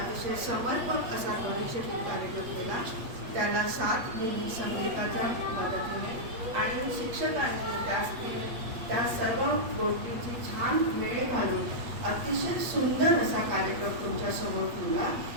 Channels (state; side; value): late; left; 8.4 ms